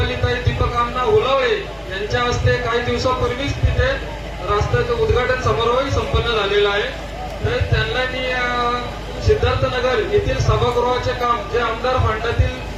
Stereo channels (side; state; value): both; identical; correlation 1.00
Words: दीपक अण्णा हुलावळे यांच्या हस्ते काही दिवसापूर्वीच तिथे रस्त्याचं उद्घाटन समारोह संपन्न झालेला आहे. तर त्यांना मी सिद्धार्थनगर येथील सभागृहाचे काम जे आमदार फंडातील